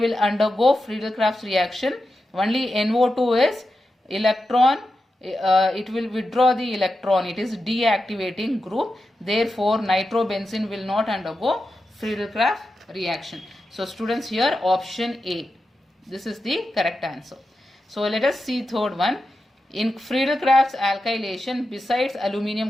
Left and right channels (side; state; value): both; normal; correlation 0.90